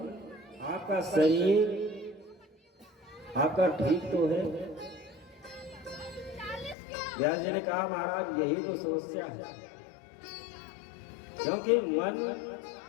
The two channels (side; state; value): right; drops out; at 6.8 s